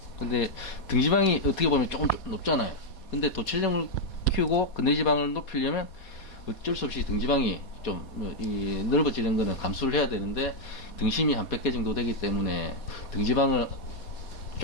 근데 등지방이 어떻게 보면 조금 높잖아요. 근데 도체중을 키우고 근대지방을 높이려면 어쩔 수 없이 등지방이 좀 넓어지는 거는 감수를 해야 되는데 등심이 한 100개 정도 되기 때문에 등지방을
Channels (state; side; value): late; right; 4.2 ms